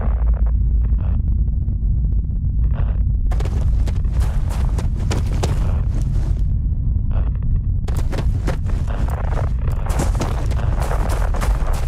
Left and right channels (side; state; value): both; identical; correlation 1.00